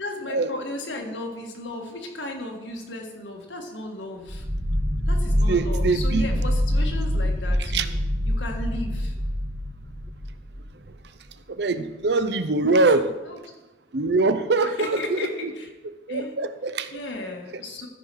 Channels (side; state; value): both; normal; correlation 0.42